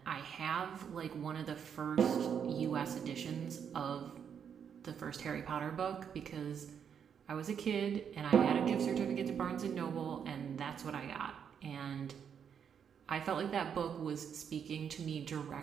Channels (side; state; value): left; quieter; 7.7 dB